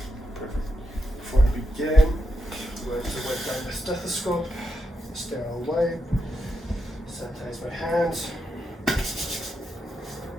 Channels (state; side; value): normal; both; correlation 0.85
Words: Before I begin, I'm going to wipe down my stethoscope, sterile wipe, sanitize my hands, and